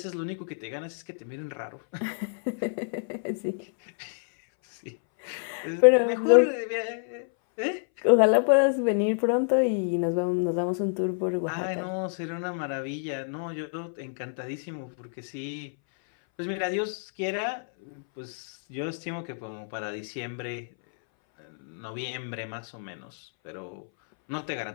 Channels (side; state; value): right; silent; 59 dB below the other